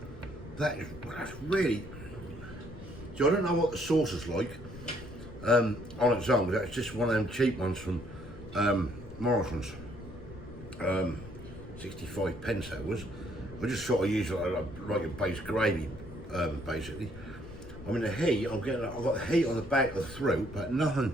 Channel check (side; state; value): left; noise; rumble, 17 dB below the sound